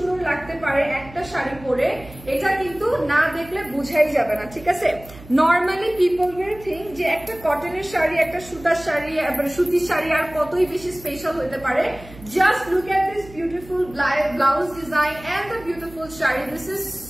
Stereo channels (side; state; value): right; noise; hum, 19 dB below the sound